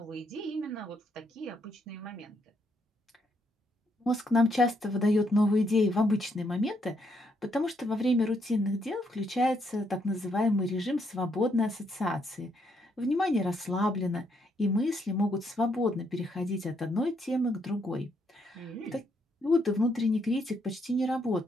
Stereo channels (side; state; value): both; normal; correlation 0.75